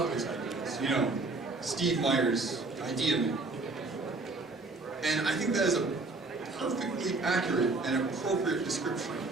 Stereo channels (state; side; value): quieter; left; 3.4 dB